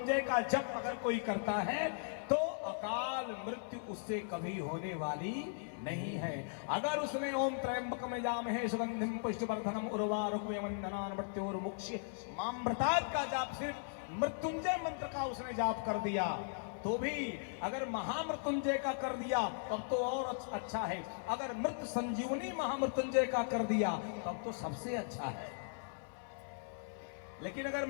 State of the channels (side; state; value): right; silent; 52 dB below the other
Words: का जप अगर कोई करता है तो अकाल मृत्यु उससे कभी होने वाली नहीं है। अगर उसने ओम त्रयंबकम यजामहे सुगंधिम पुष्टिवर्धनम उर्वारुकवंदनान् मृत्योर्मुक्ष्य मामृतात् का जाप, सिर्फ मृत्युंजय मंत्र का उसने जाप कर दिया तो भी, अगर महामृत्युंजय का कर दिया तब तो और अच्छा है, अगर मृत संजीवनी महामृत्युंजय का कर दिया तब तो सबसे अच्छा है। लेकिन अगर